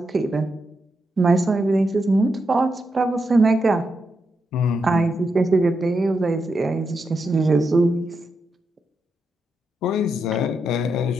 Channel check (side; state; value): both; normal; correlation 0.84